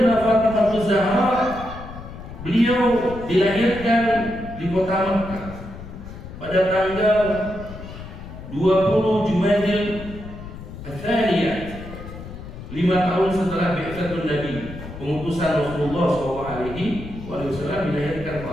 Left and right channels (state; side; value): noise; left; rumble, 12 dB below the sound